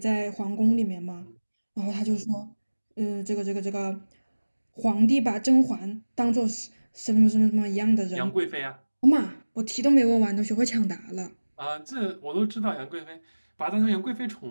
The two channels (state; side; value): inverted; both; correlation -1.00